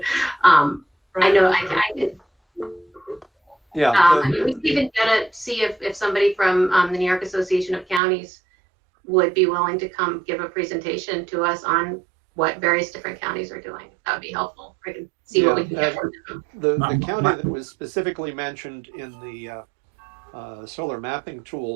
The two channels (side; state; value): left; drops out; at 8.0 s